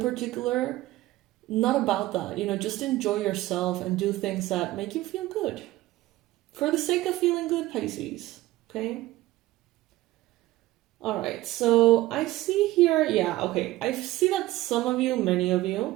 particular, not about that. Just enjoy yourself and do things that make you feel good. For the sake of feeling good, Pisces. Okay? Alright, so I see here, I see that some of you, many of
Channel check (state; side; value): quieter; left; 16.9 dB